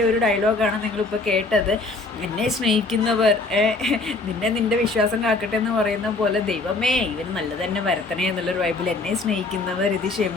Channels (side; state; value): right; quieter; 3.4 dB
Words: ഒരു ഡയലോഗാണ് നിങ്ങളിപ്പോൾ കേട്ടത്. എന്നെ സ്നേഹിക്കുന്നവർ നിന്റെ വിശ്വാസം കാക്കട്ടെ എന്ന് പറയുന്ന പോലെ, ദൈവമേ ഇവന് നല്ലത് തന്നെ വരത്തണേ എന്നുള്ളൊരു വൈബിൽ എന്നെ സ്നേഹിക്കുന്നവർ ഇത്